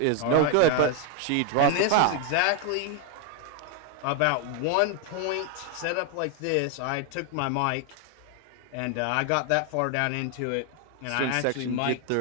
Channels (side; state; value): both; different; correlation 0.01